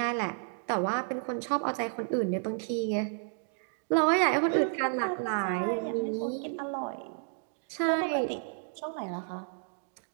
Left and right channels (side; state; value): left; silent; digital silence